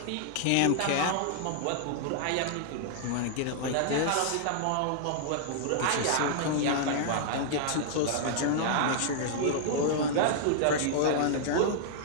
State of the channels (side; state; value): both; different; correlation -0.01